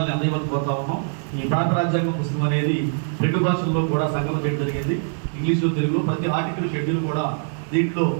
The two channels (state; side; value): silent; left; 62 dB below the other